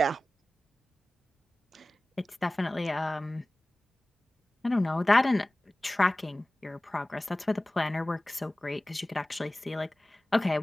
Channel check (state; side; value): normal; both; correlation 0.97